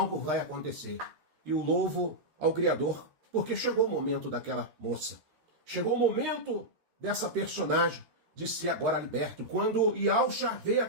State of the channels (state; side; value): late; left; 13 ms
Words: vai acontecer. E o louvo ao Criador, porque chegou o momento daquela moça. Chegou o momento dessa personagem de ser agora liberto. Quando Yahshua vê